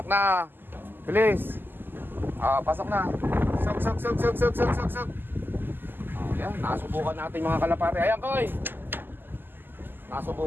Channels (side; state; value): left; late; 0.094 ms